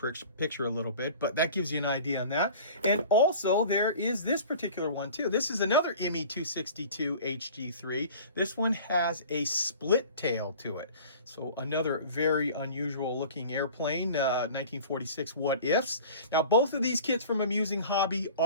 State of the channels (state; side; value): inverted; both; correlation -0.42